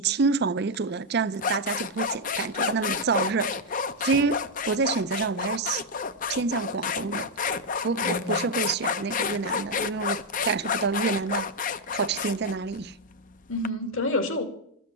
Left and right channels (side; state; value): both; normal; correlation 0.01